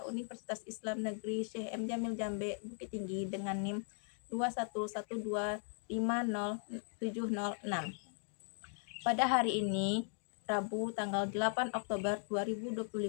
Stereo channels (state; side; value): silent; right; 52 dB below the other